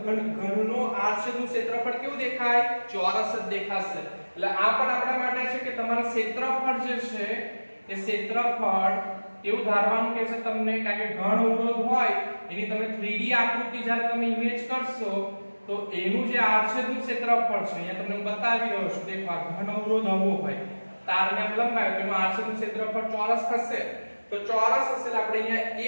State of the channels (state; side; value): inverted; both; correlation -1.00